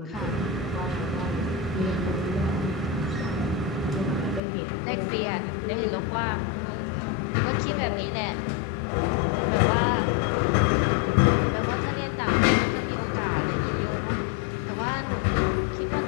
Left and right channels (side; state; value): right; drops out; at 4.4 s